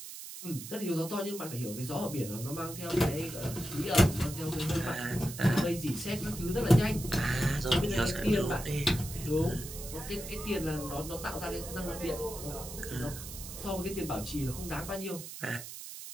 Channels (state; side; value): noise; right; hiss, 10 dB below the sound